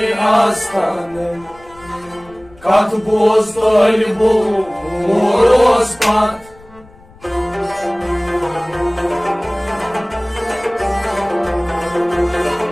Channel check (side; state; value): left; noise; rumble, 25 dB below the sound